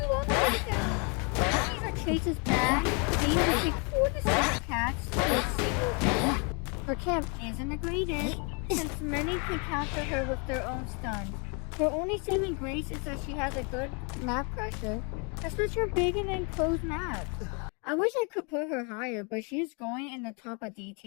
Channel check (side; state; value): right; quieter; 34.5 dB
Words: long to get them. If her chase is bad, they need to take 4 to 6 cats to a single hit. Her camp isn't the greatest, since many can counter her with their own stuns. Her only saving grace is that she has a good map pressure, especially for big and enclosed maps. I wish I could put her higher, but she's going in the top of D